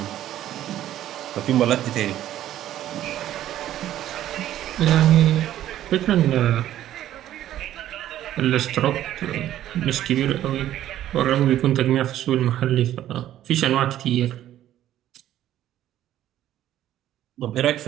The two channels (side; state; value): left; quieter; 12.5 dB